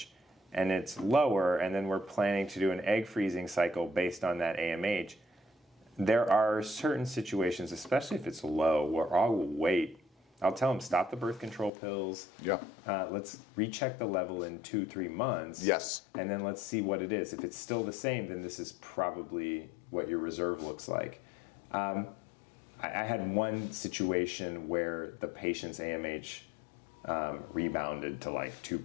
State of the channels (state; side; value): drops out; right; at 11.7 s